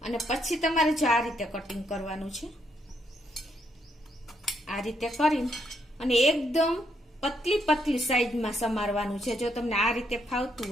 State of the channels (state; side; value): normal; both; correlation 0.75